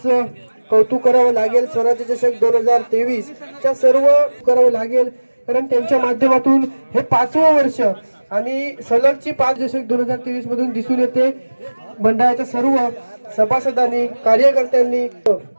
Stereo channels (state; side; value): inverted; both; correlation -1.00